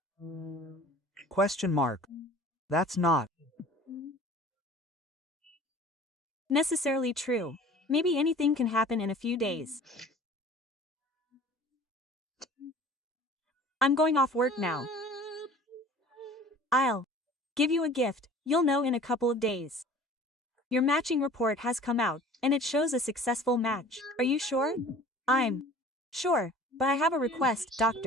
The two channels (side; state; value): both; normal; correlation 0.46